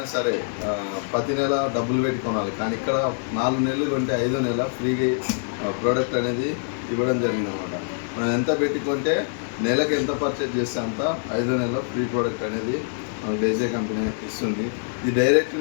సరే ప్రతి నెల డబ్బులు పెట్టి కొనాలి, కానీ ఇక్కడ 4 నెలలు కొంటే 5వ నెల ఫ్రీగా ప్రోడక్ట్ అనేది ఇవ్వడం జరిగింది అనమాట. మనం ఎంత పెట్టి కొంటే నెలకు ఎంత పర్చేజ్ చేస్తే అంత 5వ నెల ఫ్రీ ప్రోడక్ట్ అనేది మనకు డేజే కంపెనీ ఇస్తుంది. ఇది డైరెక్ట్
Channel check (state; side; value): silent; right; digital silence